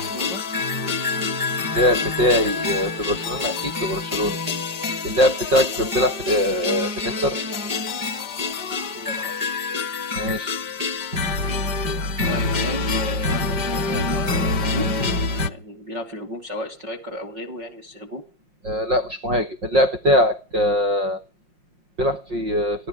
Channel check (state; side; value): late; left; 5.6 ms